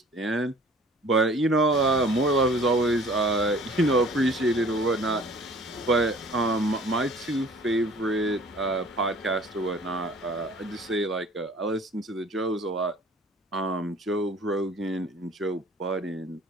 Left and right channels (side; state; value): both; normal; correlation 0.50